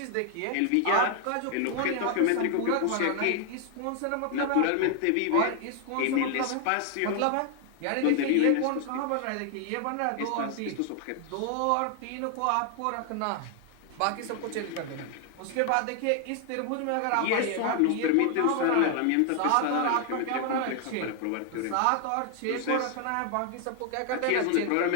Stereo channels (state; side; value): different; both; correlation 0.00